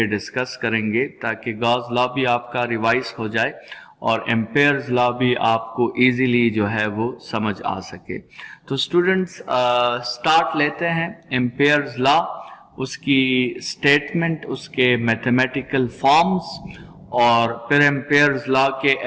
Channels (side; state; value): both; identical; correlation 1.00